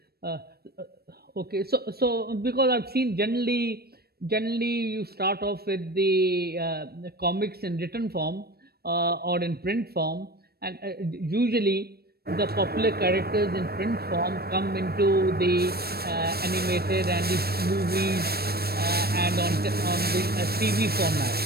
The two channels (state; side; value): late; left; 0.46 ms